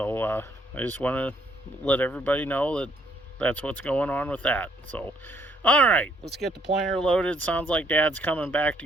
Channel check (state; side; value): normal; both; correlation 0.67